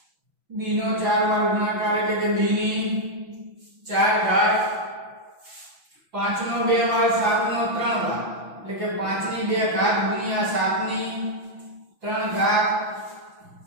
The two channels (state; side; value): late; left; 6.0 ms